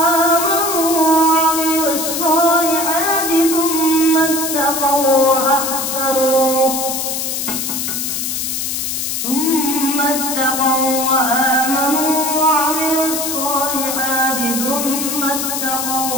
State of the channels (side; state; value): left; noise; hiss, 2 dB below the sound